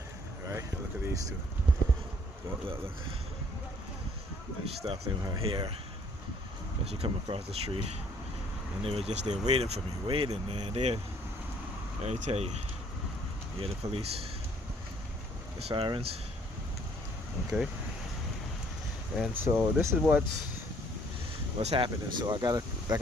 right? Look at these two. Look. And she stopped in her hair as she come across the street, and they were just there waiting for me, waiting, man. Let me tell you, yeah, the police, the sirens, okay. And so this is what's happening. So I got like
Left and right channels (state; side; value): normal; both; correlation 0.62